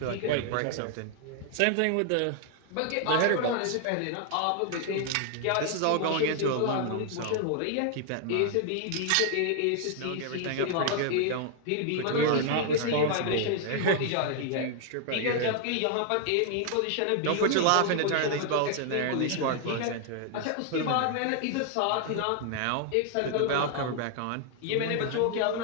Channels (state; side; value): different; both; correlation 0.00